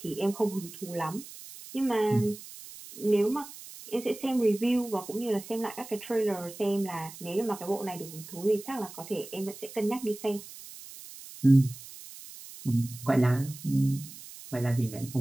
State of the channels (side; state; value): right; noise; hiss, 15 dB below the sound